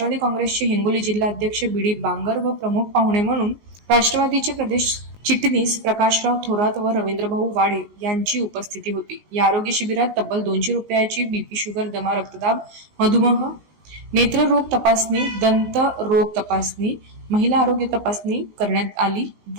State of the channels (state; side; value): late; left; 19 ms